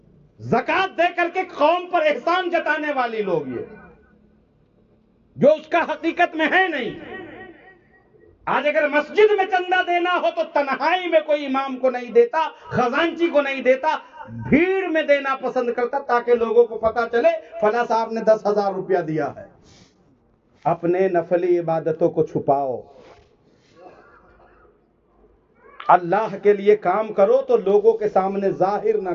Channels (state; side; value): identical; both; correlation 1.00